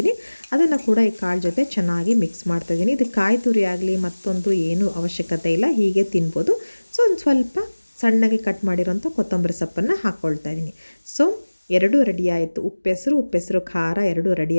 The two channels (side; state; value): both; inverted; correlation -1.00